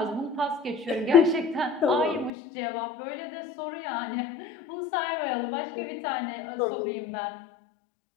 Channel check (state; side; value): drops out; right; at 2.3 s